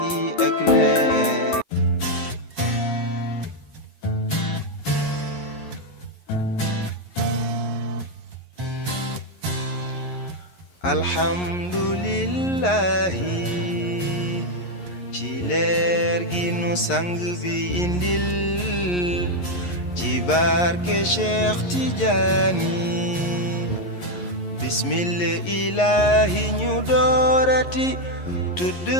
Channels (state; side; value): late; right; 11 ms